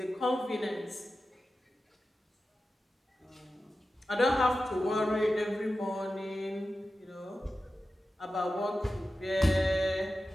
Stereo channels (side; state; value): both; normal; correlation 0.93